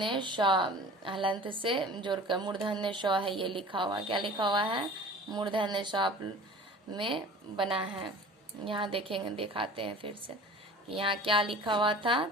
श हलंत से जोड़कर मूर्धन्य श है ये लिखा हुआ। क्या लिखा हुआ है? मूर्धन्य श में बना है। यहाँ देखेंगे, दिखाते हैं फिर से कि यहाँ क्या लिखा हुआ था।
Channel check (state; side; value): normal; both; correlation 0.42